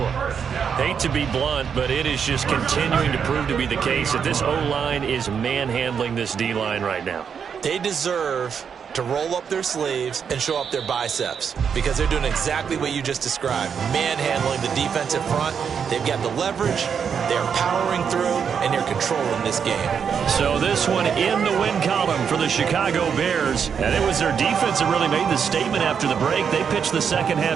Hate to be blunt, but it is just continuing to prove to be the case that this O-line is manhandling this D-line right now. They deserve to roll up their sleeves and show up their biceps because they're doing exactly what you just described, manhandling the defensive front. They've got the leverage, they're powering through, and they're controlling this game. So this one in the win column for the Chicago Bears, and it was their defense that really made the statement after the break. They pitched the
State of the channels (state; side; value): quieter; left; 7.0 dB